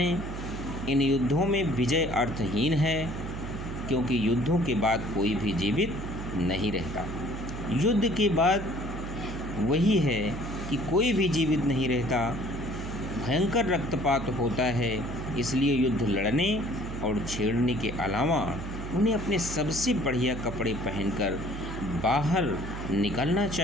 इन युद्धों में विजय अर्थहीन है, क्योंकि युद्धों के बाद कोई भी जीवित नहीं रहता। युद्ध के बाद वही है कि कोई भी जीवित नहीं रहता, भयंकर रक्तपात होता है। इसलिए युद्ध लड़ने और छेड़ने के अलावा उन्हें अपने सबसे बढ़िया कपड़े पहनकर बाहर निकलना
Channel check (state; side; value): noise; right; hum, 8 dB below the sound